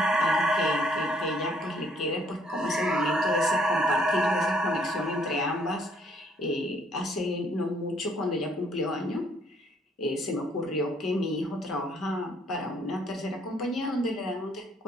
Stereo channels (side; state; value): both; normal; correlation 0.65